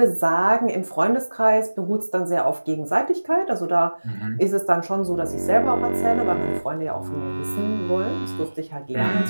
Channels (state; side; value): inverted; both; correlation -1.00